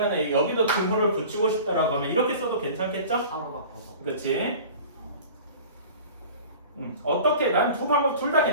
여기도 등호를 붙이고 싶다라고 하면 이렇게 써도 괜찮겠죠? 3으로 바꿔서. 그치? 어떻게 난 두 방법 둘 다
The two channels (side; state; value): both; inverted; correlation -0.40